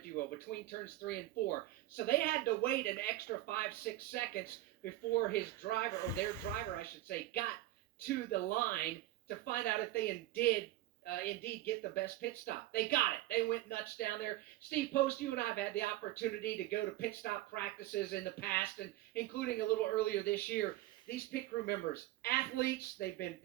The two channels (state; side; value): quieter; left; 15.4 dB